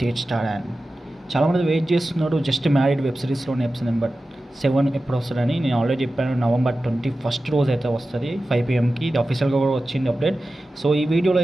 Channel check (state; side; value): normal; both; correlation 0.94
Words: Tej star. And చాలామంది వెయిట్ చేస్తున్నారు జస్ట్ మ్యారీడ్ వెబ్ సిరీస్లోని ఎపిసోడ్ నెంబర్ 7 ఎప్పుడు వస్తుందని. నేను ఆల్రెడీ చెప్పాను, November 21 రోజు అయితే వస్తుంది 5 PM. ఇది అఫీషియల్గా కూడా వచ్చింది అప్డేట్. సో ఈ వీడియోలో